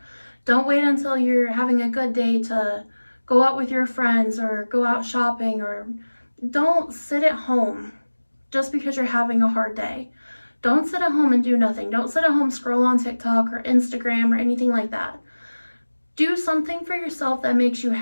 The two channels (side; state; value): both; inverted; correlation -1.00